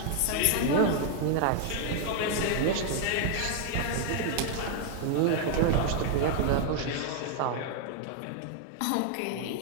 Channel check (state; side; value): different; both; correlation 0.00